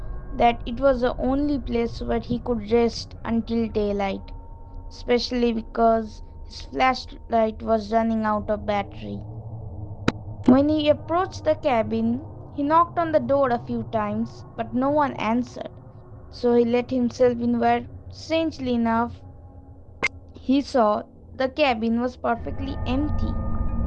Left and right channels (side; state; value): both; identical; correlation 1.00